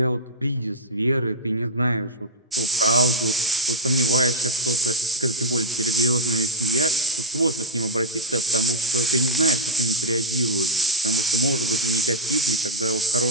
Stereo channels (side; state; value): both; normal; correlation 0.03